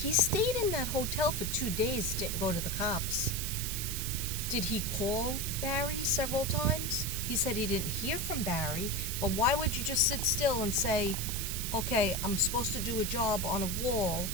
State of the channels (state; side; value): noise; right; hiss, 3 dB below the sound